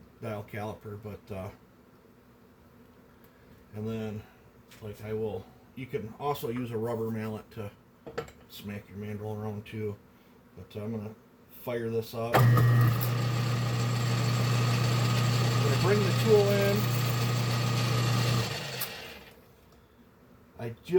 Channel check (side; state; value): both; identical; correlation 1.00